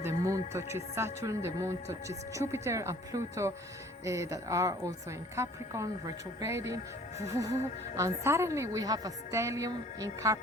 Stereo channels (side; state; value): both; normal; correlation 0.53